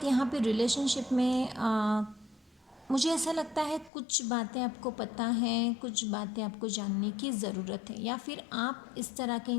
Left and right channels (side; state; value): right; drops out; at 3.9 s